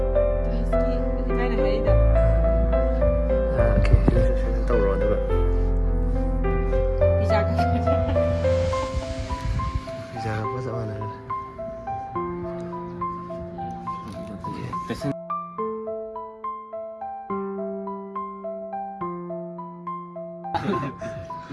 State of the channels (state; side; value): identical; both; correlation 1.00